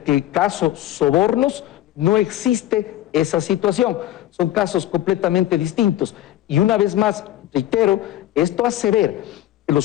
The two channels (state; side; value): quieter; right; 13.5 dB